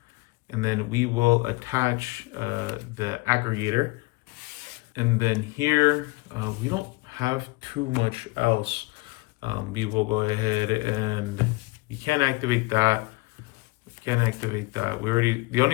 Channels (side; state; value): right; quieter; 24.1 dB